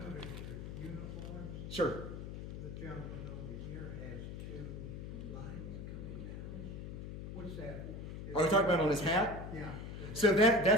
your uniforms. Sure. The gentleman over here has two lines coming down. What's that? Are you talking about on his hat? Yeah. So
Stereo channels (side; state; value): left; noise; hum, 8 dB below the sound